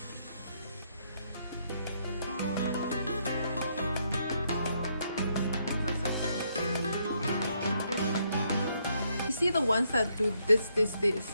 You see the ones that do this.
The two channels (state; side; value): inverted; both; correlation -0.74